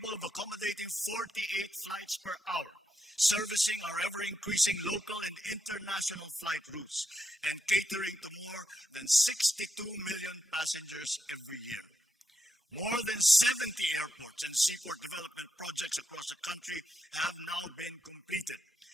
of accommodating 48 flights per hour, servicing our ever-increasing local and international flight routes, and catering to more than 62 million passengers every year. More than 70 airports and seaport development projects across the country have now been completed,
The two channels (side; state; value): both; normal; correlation 0.83